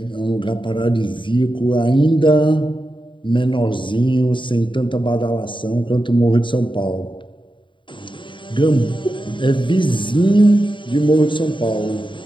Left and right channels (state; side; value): late; right; 0.24 ms